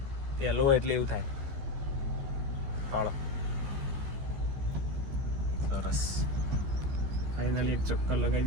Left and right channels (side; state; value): left; late; 15 ms